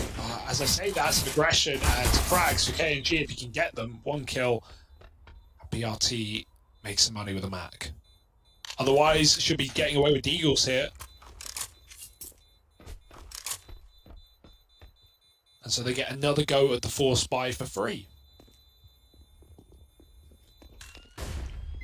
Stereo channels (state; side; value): identical; both; correlation 1.00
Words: As I say, that's some aggression and frags for KNG if you can get them. 1 kill. BRT makes some money with a Mac. Otherwise, should be getting away with Deagles here. And so they get another go at the 4 spy for free.